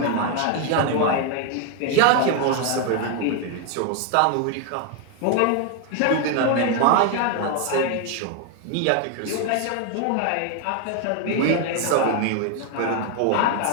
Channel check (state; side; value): different; both; correlation 0.00